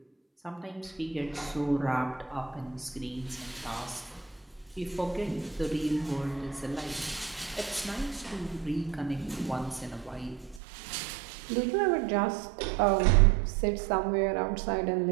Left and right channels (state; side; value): drops out; left; at 10.6 s